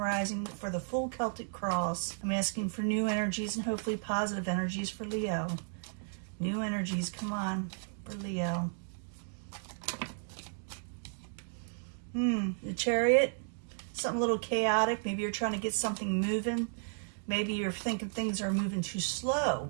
for the full Celtic cross. I'm asking for new energies and hopefully positive energies for Leo. New energies, come on, for Leo. The Chariot, something a little chaotic. Maybe you're trying to get something moving. Maybe you're thinking things are moving too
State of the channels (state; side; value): silent; left; digital silence